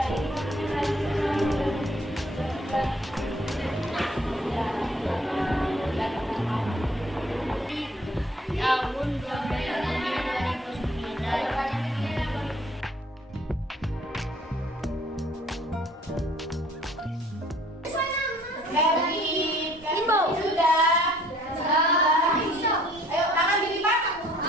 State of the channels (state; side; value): normal; both; correlation 0.58